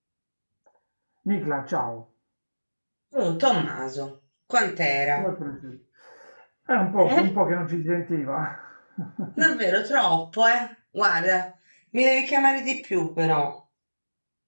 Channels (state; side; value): inverted; both; correlation -1.00